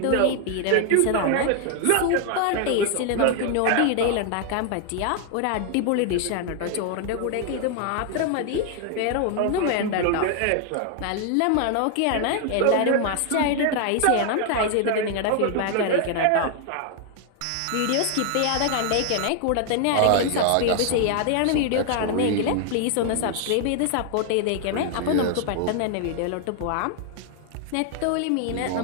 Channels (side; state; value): both; different; correlation 0.00